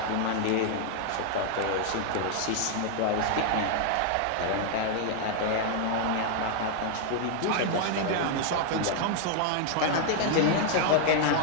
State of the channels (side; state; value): both; different; correlation 0.00